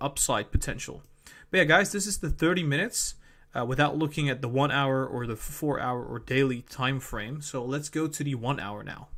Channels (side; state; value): both; identical; correlation 1.00